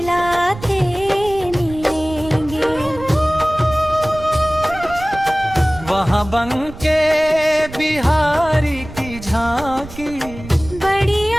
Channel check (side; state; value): right; noise; rumble, 14 dB below the sound